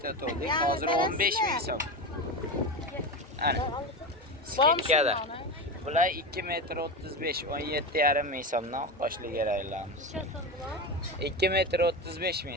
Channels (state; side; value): normal; both; correlation 0.21